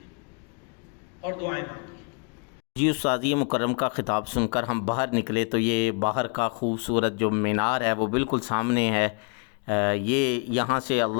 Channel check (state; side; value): quieter; right; 36.8 dB